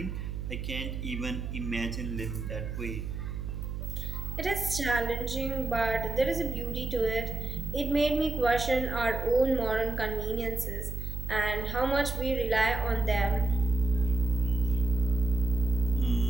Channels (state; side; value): noise; right; hum, 5 dB below the sound